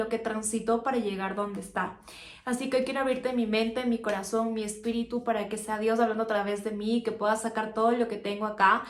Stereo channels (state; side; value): identical; both; correlation 1.00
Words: que transitó para llegar donde está. Así que hoy quiero abrirte mi mente, mi corazón, mi espíritu para que sea Dios hablando a través de mí, que pueda sacar todo lo que tengo acá